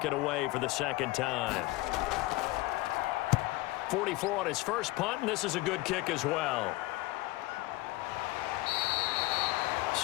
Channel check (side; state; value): right; quieter; 19.6 dB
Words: it away for the second time. 44 on his first punt, and this is a good kick as well.